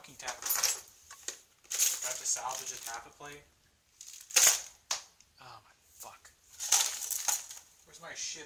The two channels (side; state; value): both; identical; correlation 1.00